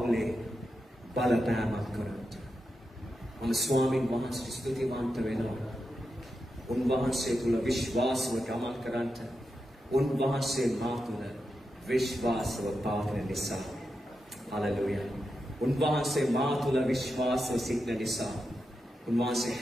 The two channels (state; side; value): normal; both; correlation 0.88